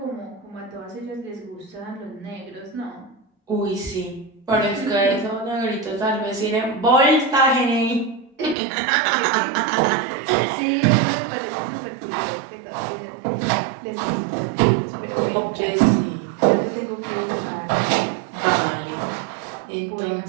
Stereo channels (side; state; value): left; drops out; at 8.6 s